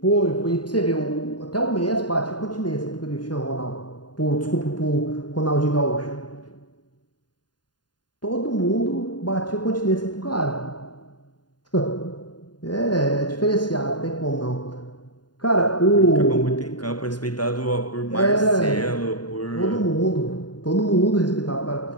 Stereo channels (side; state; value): right; late; 0.70 ms